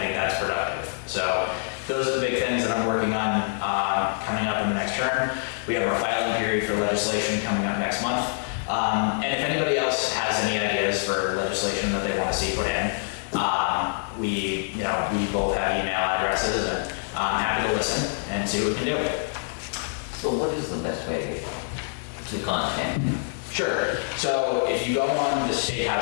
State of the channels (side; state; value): right; silent; 59 dB below the other